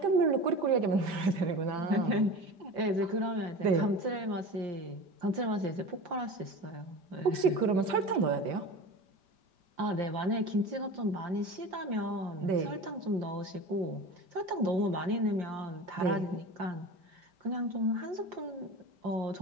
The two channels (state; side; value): late; left; 5.1 ms